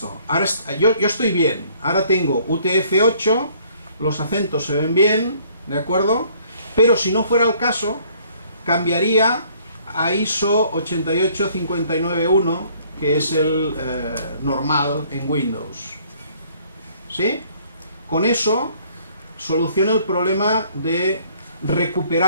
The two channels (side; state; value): both; inverted; correlation -0.60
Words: Ahora yo estoy bien. Ahora tengo UTF-8, los acentos se ven bien, ¿de acuerdo? Pero si no fuera el caso, cambiaría a ISO 88591, que es el normal en Windows. ¿Sí? Con eso soluciona el problema de